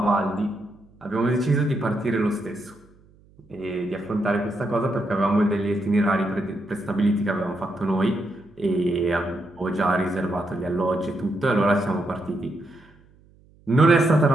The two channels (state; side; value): noise; right; hum, 29 dB below the sound